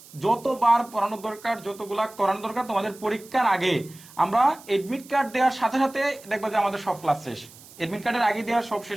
যতবার পড়ানো দরকার, যতগুলা করানো দরকার, তোমাদের পরীক্ষার আগে আমরা এডমিট কার্ড দেওয়ার সাথে সাথে দেখবা যে আমাদের সব ক্লাস শেষ। এডমিট কার্ডের আগে দেওয়া সব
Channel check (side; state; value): right; noise; hiss, 21 dB below the sound